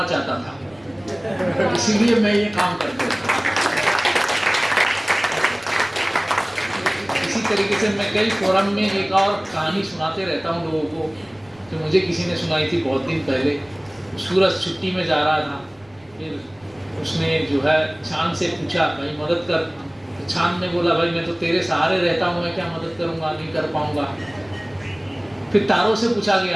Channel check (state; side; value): noise; right; rumble, 29 dB below the sound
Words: चाहता था, इसीलिए मैं ये काम करता था। इसी तरीके से मैं कई फोरम में एक और कहानी सुनाते रहता हूँ लोगों को, जो मुझे किसी ने सुनाई थी बहुत दिन पहले। सूरज छुट्टी में जा रहा था, फिर उसने जो है चांद से पूछा भाई मदद कर। तो चांद ने बोला भाई मैं तो तेरे सहारे रहता हूँ, मैं क्या मदद करूँगा, नहीं कर पाऊँगा। फिर तारों से पूछा